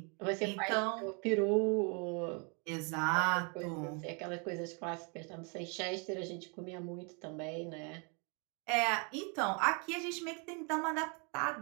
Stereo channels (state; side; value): quieter; left; 34.9 dB